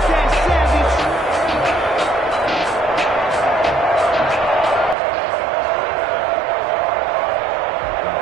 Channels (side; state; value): left; drops out; at 5.0 s